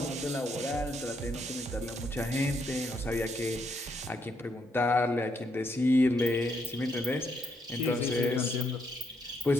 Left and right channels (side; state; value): both; normal; correlation 0.75